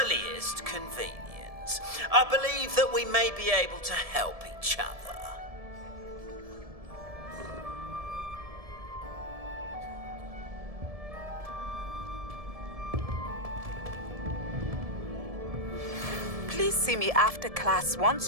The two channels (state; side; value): late; left; 1.7 ms